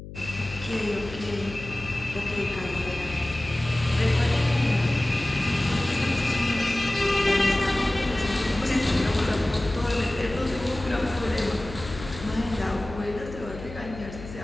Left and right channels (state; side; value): noise; left; hum, 12 dB below the sound